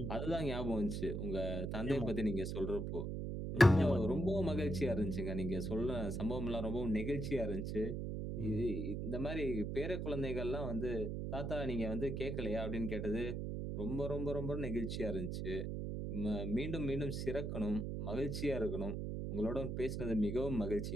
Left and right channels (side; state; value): right; noise; hum, 3 dB below the sound